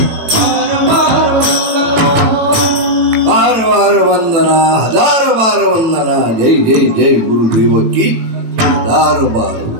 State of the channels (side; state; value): left; late; 18 ms